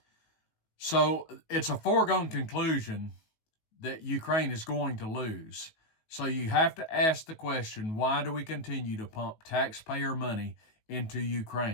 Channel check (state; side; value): late; right; 19 ms